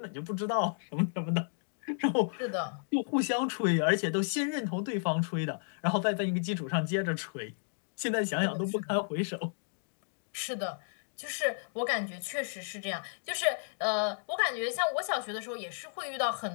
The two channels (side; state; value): right; silent; digital silence